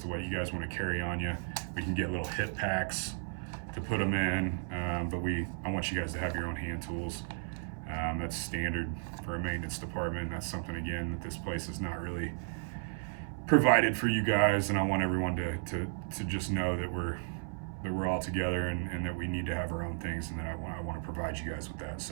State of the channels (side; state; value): left; silent; 55 dB below the other